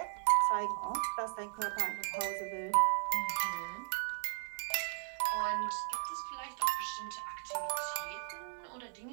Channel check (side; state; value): left; silent; 53 dB below the other